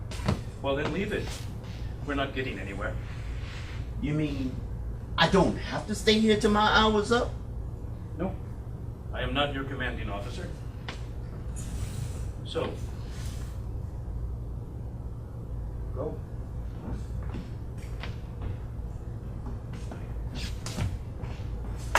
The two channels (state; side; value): identical; both; correlation 1.00